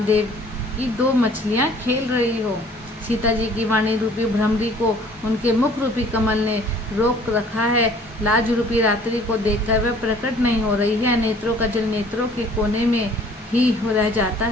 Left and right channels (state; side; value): normal; both; correlation 0.54